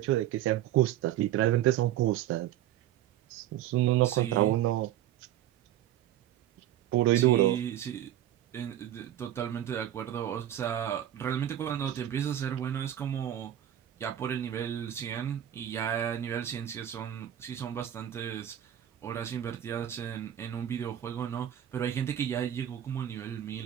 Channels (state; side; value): quieter; left; 11.8 dB